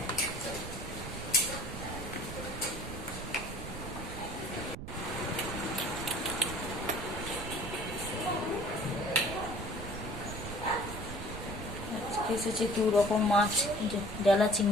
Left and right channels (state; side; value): noise; right; rumble, 8 dB below the sound